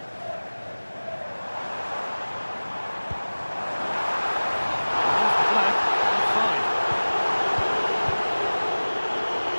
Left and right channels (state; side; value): inverted; both; correlation -1.00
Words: There's the flag. Offside.